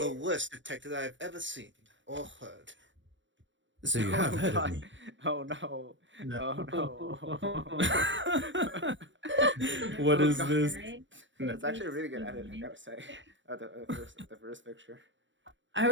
worst detective I've ever seen or heard. So you have heard of me. Oh no. No. Oh no. What Oh, is God. this? That's actually a really good edit, I gotta say. The first picture. I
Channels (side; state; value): left; late; 0.54 ms